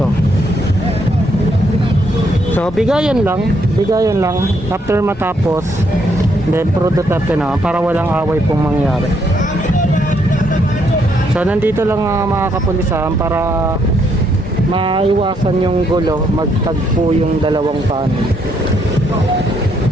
So bigayan lang after matapos, then pro Duterte naman para walang away pong mangyari. So nandito lang mga kapulisan para maiwasan yung gulo, magtagpo yung dalawang panig.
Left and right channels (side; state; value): both; normal; correlation 0.73